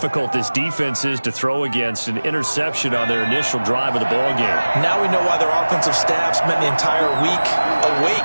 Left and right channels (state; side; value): inverted; both; correlation -1.00